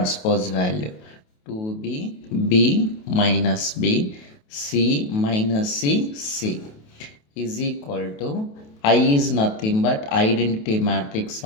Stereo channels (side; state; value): right; late; 28 ms